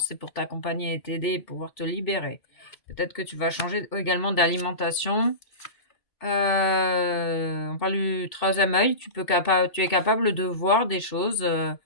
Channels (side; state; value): right; late; 2.7 ms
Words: c'est pour t'accompagner et t'aider et pouvoir te libérer. Peut-être que tu vas changer également d'alimentation. On parle du troisième œil. Tu es capable de voir des choses, de